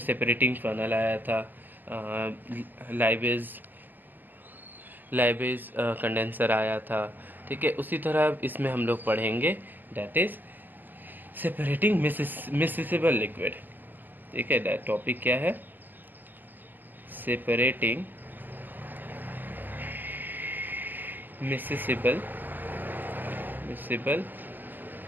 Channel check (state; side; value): late; left; 0.087 ms